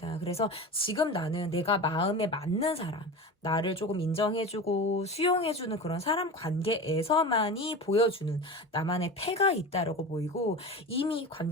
그래서 지금 나는 내가 마음에 맞는 사람, 나를 조금 인정해주고 수용해주는 그런 사람 관계에서만이 보여주는 나만의 패가 있다라고 보이고 이미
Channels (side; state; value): both; normal; correlation 0.29